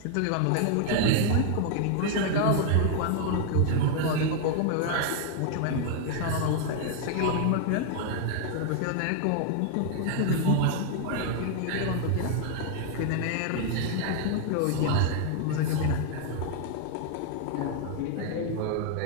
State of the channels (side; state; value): both; different; correlation 0.00